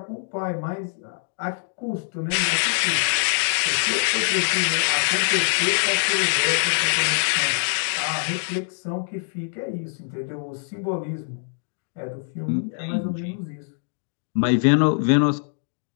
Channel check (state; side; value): silent; right; digital silence